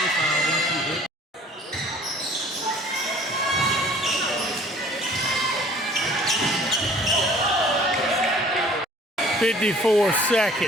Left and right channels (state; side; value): normal; both; correlation 0.52